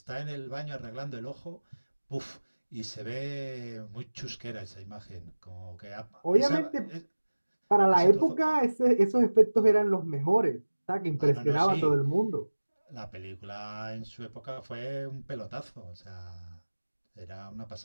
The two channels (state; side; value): inverted; both; correlation -1.00